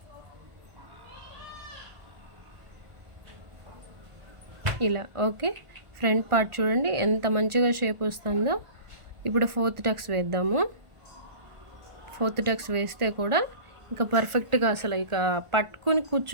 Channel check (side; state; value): left; late; 1.5 ms